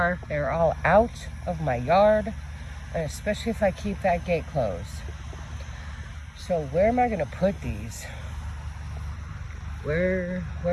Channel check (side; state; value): both; identical; correlation 1.00